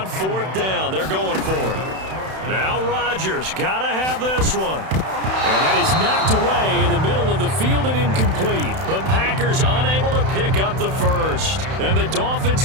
4th down. They're going for it. Now Rodgers, got to have this one. And that is knocked away in the middle of the field and incomplete. The Packers unable to pick up the 1st. And the Dolphins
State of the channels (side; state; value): left; late; 31 ms